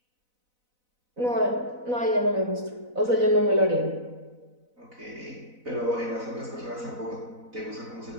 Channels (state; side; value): late; left; 4.0 ms